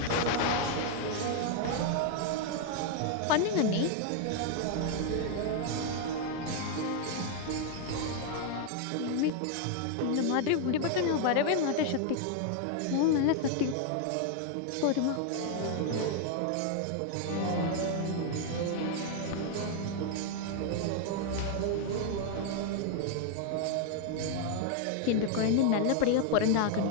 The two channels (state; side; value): different; both; correlation 0.00